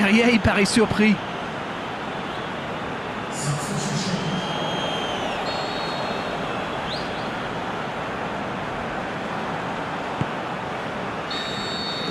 il paraît surpris.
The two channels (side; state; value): both; identical; correlation 1.00